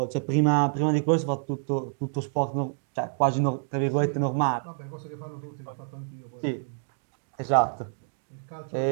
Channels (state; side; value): silent; left; digital silence